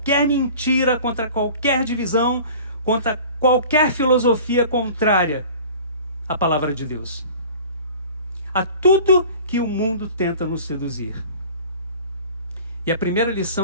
mentira, contra qualquer divisão, contra qualquer filosofia contrária à palavra de Deus, a tudo que o mundo tenta nos seduzir. E a primeira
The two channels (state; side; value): inverted; both; correlation -0.43